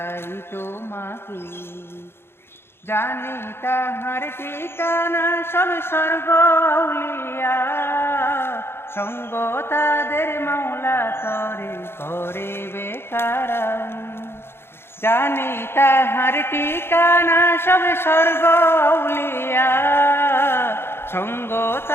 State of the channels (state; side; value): late; right; 0.11 ms